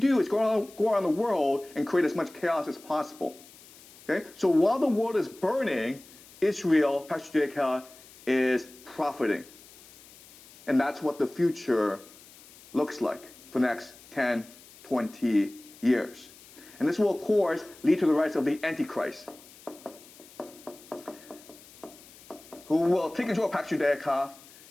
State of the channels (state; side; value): noise; left; hiss, 22 dB below the sound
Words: is go around the world and create as much chaos as possible. Okay? So while the world is burning, Israel, Pax Judaica, is profiting. And that's what the future looks like for the next 10, 20 years. And this will, of course, lead to the rise of the Antichrist, who will take control of Pax Judaica